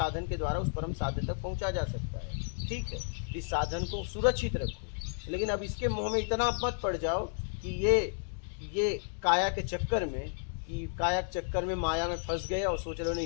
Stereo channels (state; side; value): silent; right; digital silence